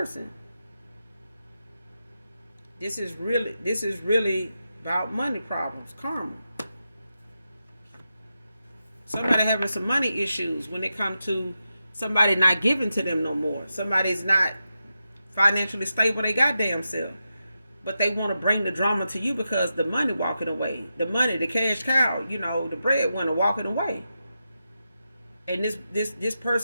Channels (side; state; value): both; inverted; correlation -0.88